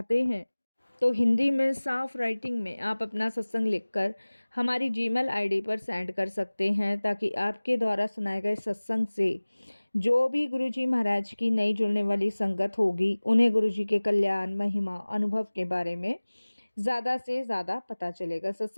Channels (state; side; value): inverted; both; correlation -1.00